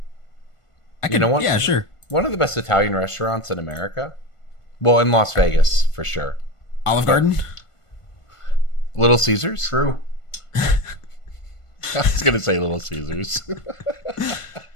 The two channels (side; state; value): right; late; 1.5 ms